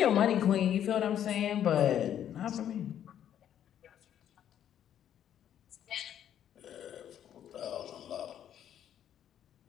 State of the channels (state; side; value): quieter; right; 10.2 dB